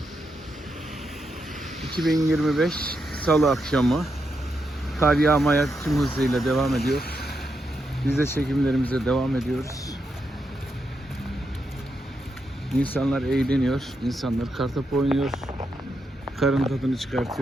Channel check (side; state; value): both; normal; correlation 0.83